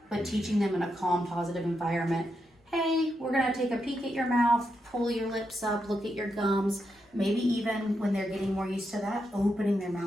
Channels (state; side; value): normal; both; correlation 0.84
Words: but teaching them in a calm, positive environment. Hey, we're going to take a peek at your mouth, pull your lips up, look at your gums. Maybe even when they're getting more used to that, opening their